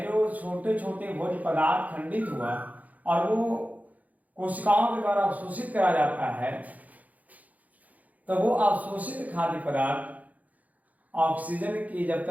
जो छोटे छोटे भोज्य पदार्थ खंडित हुआ और वो कोशिकाओं के द्वारा अवशोषित करा जाता है, तो वो अवशोषित खाद्य पदार्थ ऑक्सीजन की जब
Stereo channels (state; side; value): late; left; 0.076 ms